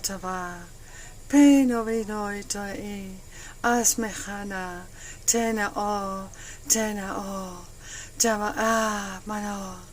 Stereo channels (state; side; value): identical; both; correlation 1.00